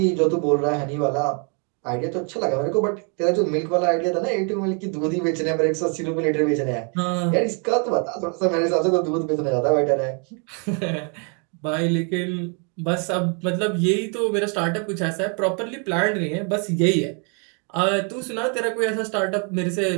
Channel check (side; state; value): left; quieter; 37.7 dB